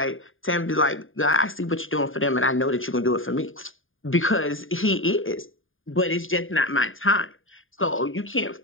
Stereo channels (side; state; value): right; late; 0.59 ms